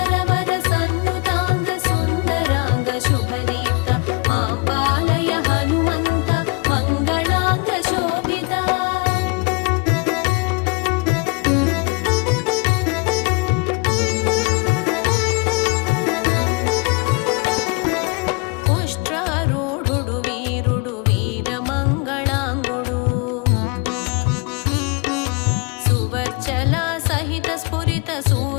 సన్నుతాంగ సుందరాంగ శుభదీప్త ఆంబాలయ హనుమంత మంగళాంగ శోభిత పుష్ట్రారూఢుడు వీరుడు వీరమంగళాంగుడు సువర్చల సహిత స్ఫురిత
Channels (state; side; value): quieter; right; 28.6 dB